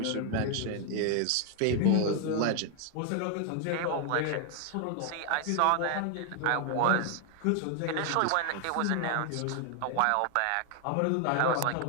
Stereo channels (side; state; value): both; different; correlation 0.00